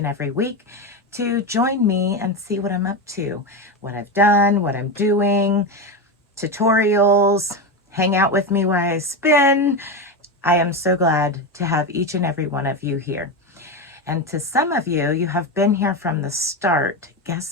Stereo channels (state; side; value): normal; both; correlation 0.15